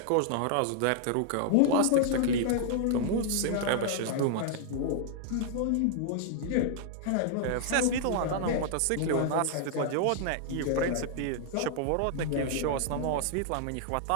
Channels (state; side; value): different; both; correlation 0.00